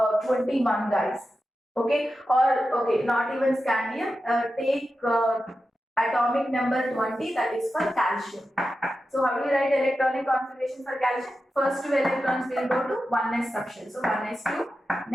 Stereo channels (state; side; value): normal; both; correlation 0.91